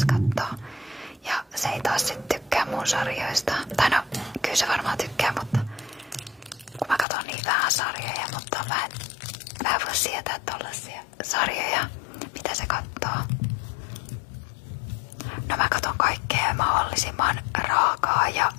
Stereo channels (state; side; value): drops out; right; at 7.1 s